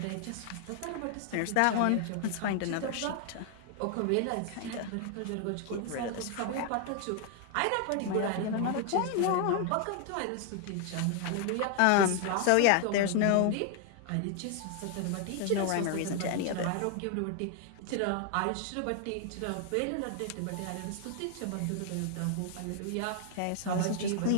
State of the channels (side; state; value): both; different; correlation 0.00